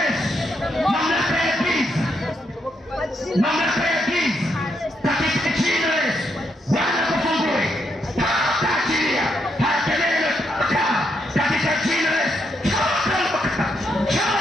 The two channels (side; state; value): both; normal; correlation 0.78